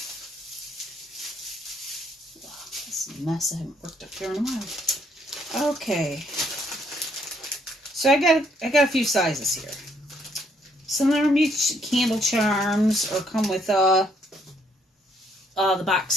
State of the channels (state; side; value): normal; both; correlation 0.68